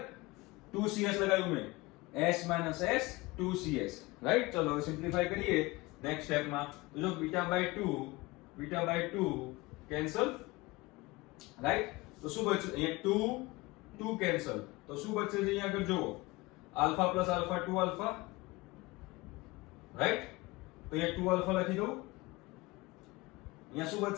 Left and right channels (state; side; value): quieter; right; 22.1 dB